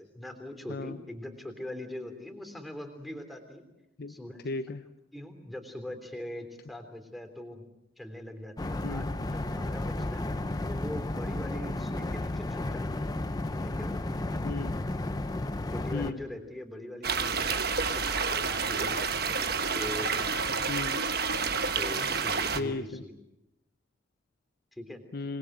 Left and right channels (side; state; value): both; normal; correlation 0.33